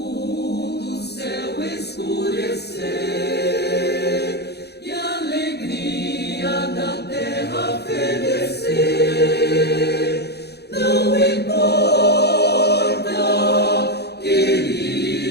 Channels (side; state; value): right; late; 0.48 ms